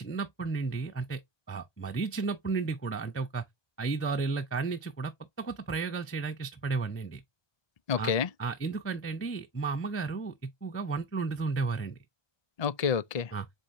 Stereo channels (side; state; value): right; late; 1.2 ms